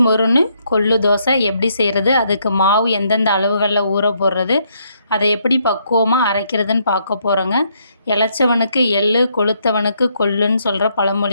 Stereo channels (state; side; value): inverted; both; correlation -0.73